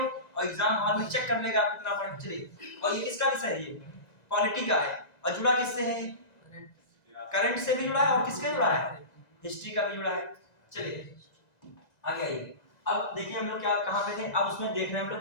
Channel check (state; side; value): late; right; 1.9 ms